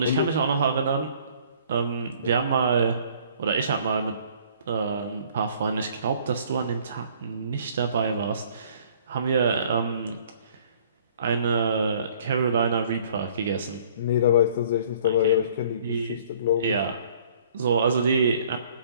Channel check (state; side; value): inverted; both; correlation -0.56